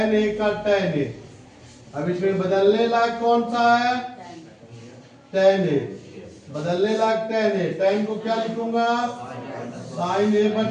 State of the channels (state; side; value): identical; both; correlation 1.00